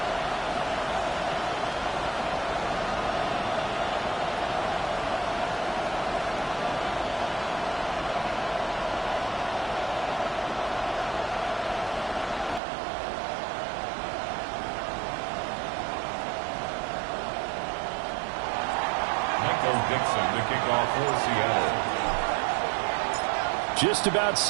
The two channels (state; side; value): drops out; left; at 12.6 s